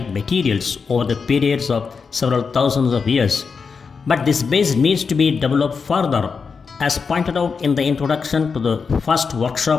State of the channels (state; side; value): quieter; right; 5.3 dB